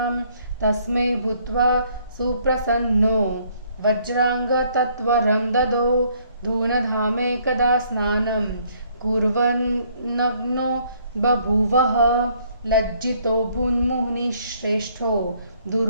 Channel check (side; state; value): both; inverted; correlation -0.65